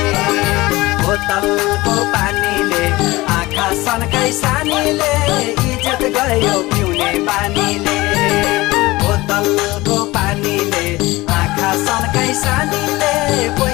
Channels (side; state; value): right; quieter; 20.1 dB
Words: बोतलको पानीले आँखा सनकाई सानीले इज्जत गयो पिउने बानीले बोतलको पानीले आँखा सनकाई सानीले